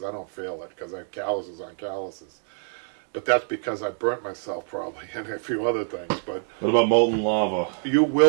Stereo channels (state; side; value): silent; left; digital silence